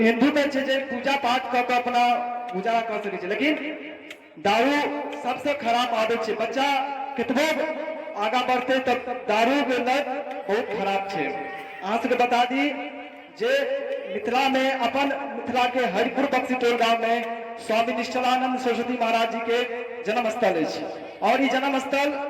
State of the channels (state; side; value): identical; both; correlation 1.00